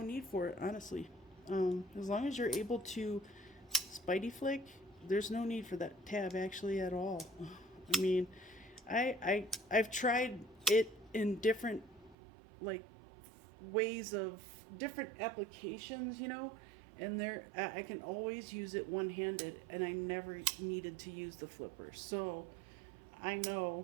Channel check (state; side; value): drops out; left; at 12.2 s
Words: need for it, honestly. As long as you're able to spidey flick, there's no need for that tab actually at all. I mean, I've tried it in different like ways of different applications, you know, and there I can always use it one-handed, and I never needed to use the flipper. So I